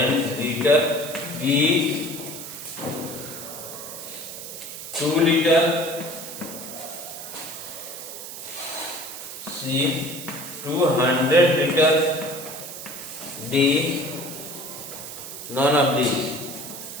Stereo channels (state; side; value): noise; right; hiss, 10 dB below the sound